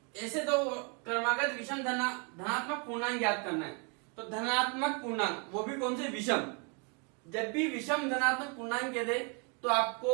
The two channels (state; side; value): quieter; left; 35.7 dB